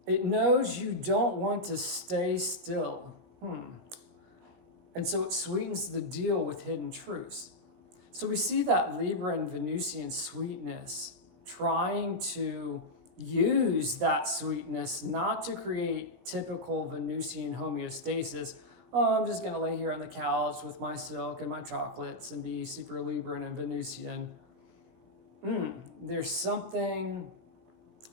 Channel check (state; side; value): late; left; 17 ms